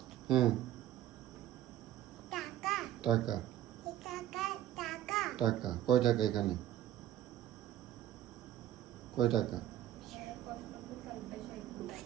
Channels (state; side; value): quieter; left; 12.6 dB